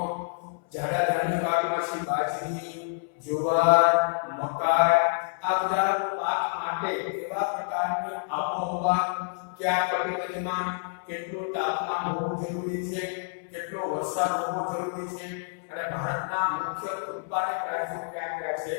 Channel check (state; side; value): silent; right; 59 dB below the other